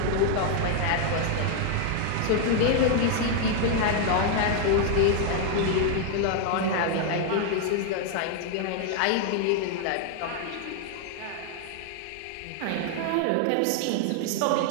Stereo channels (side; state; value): both; different; correlation 0.00